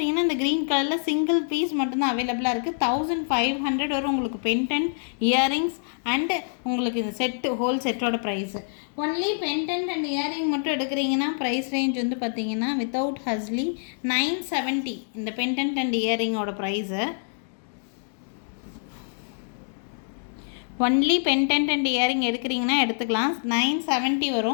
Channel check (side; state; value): right; silent; digital silence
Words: இந்த க்ரீன் கலரில் சிங்கிள் பீஸ் மட்டும்தான் அவைலபிளாக இருக்குது. 1500 வரும் உங்களுக்கு பெண்டன்ட், இயரிங்ஸ் அண்டு உங்களுக்கு இந்த செட்டு ஹோல் செட்டோட price. Only pendant and earring மட்டும் எடுக்கிறீங்கன்னா ப்ரைஸ் ரேஞ்ச் வந்து பார்த்திங்கன்னா வித்தவுட் ஹஸ்லி 970 இந்த பெண்டன்ட் அண்ட் இயரிங்கோட price. Only pendant and earring எடுக்கிறீங்கன்னா எடுத்துக்கலாம், 970